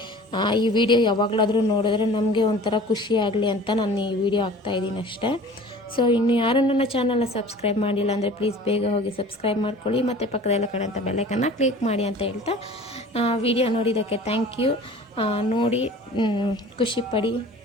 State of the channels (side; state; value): both; normal; correlation 0.44